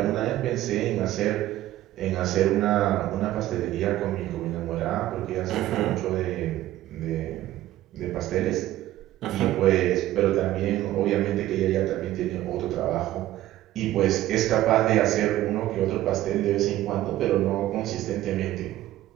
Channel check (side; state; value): left; quieter; 14.6 dB